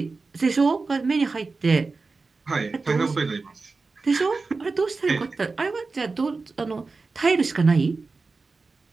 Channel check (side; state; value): left; quieter; 4.0 dB